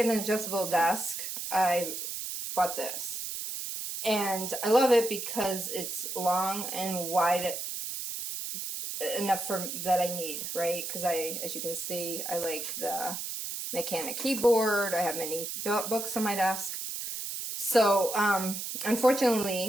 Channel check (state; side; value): noise; right; hiss, 5 dB below the sound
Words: an adjustable desk, I bought this. And I love it because it's long and wide enough for that I need, right? Because as you can see, I like the mechanic keyboard. I have many books on my desk. So